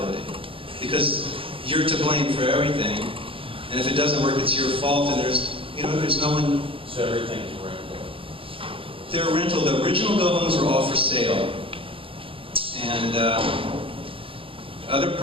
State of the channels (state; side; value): late; left; 0.26 ms